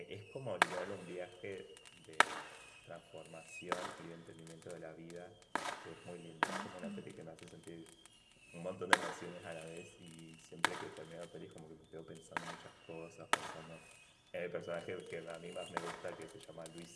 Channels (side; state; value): both; identical; correlation 1.00